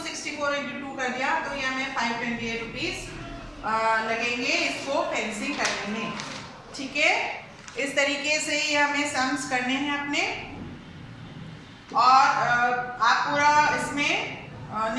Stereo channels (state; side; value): identical; both; correlation 1.00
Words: × 2 कर दिया, तो ये हमें 528 रुपीज लगेंगे इसको फेंसिंग करने में। ठीक है, इस तरीके से ये हमें सम्स करने हैं अपने। और आप पूरा इसमें